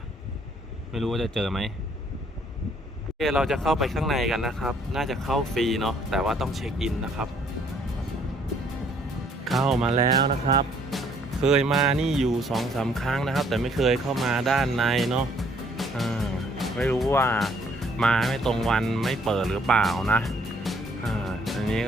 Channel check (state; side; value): normal; both; correlation 0.64